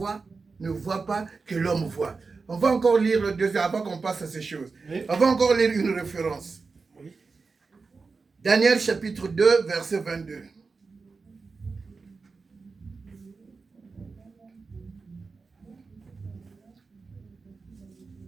ne voit pas, que l'homme voit? On va encore lire le deuxième avant qu'on passe à ces choses. Oui. On va encore lire une référence. Oui. Daniel chapitre 2, verset 22.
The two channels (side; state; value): left; quieter; 4.4 dB